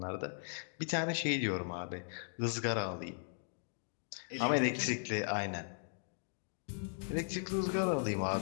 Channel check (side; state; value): right; silent; digital silence